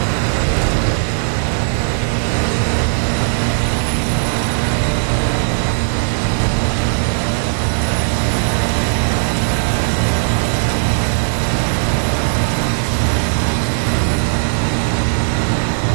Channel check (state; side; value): silent; left; digital silence